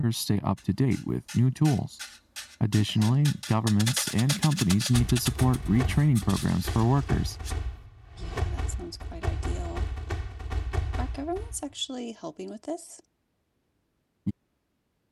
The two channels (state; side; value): identical; both; correlation 1.00